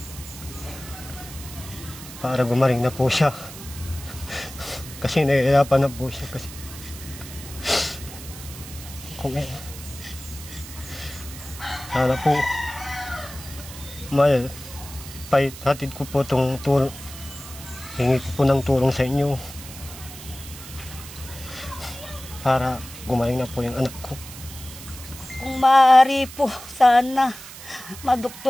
Para gumaling na po siya. Kasi nahihirapan na po siya kasi sana po hatid ko po itong tulong, hingi ko po ng tulong sa inyo para gumaling na po yung anak ko. Kung maaari po, sana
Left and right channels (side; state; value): right; noise; hiss, 14 dB below the sound